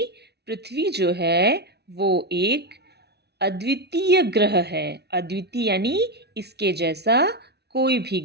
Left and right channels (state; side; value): late; left; 0.49 ms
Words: पृथ्वी जो है वो एक अद्वितीय ग्रह है. अद्वितीय यानी इसके जैसा कोई भी